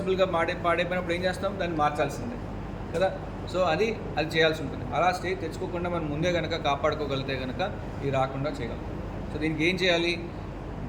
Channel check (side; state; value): both; identical; correlation 1.00